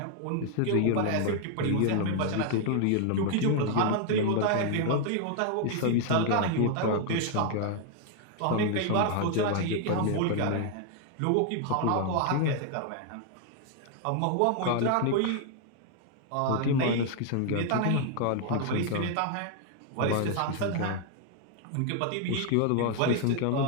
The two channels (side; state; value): both; different; correlation 0.00